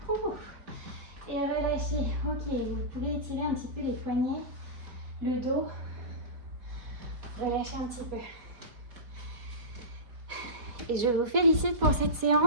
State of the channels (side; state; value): left; late; 4.2 ms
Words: Et relâchez. Ok, vous pouvez étirer un petit peu les poignets, le dos. Relâchez un petit peu. Et je vous félicite pour cette